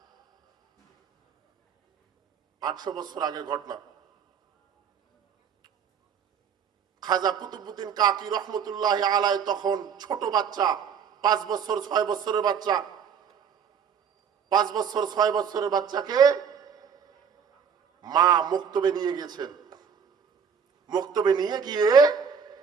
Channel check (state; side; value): quieter; left; 6.9 dB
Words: 800 বছর আগের ঘটনা। খাজা কুতুবউদ্দিন কাকি রহমতুল্লাহ আলাইহি তখন ছোট বাচ্চা, 5 বছর 6 বছরের বাচ্চা। 5 বছর 6 বছরের বাচ্চাকে মা মক্তবে নিয়ে গেছেন। মক্তবে নিয়ে গিয়ে